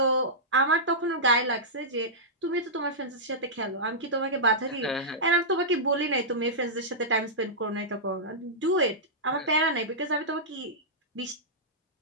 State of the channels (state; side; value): normal; both; correlation -0.13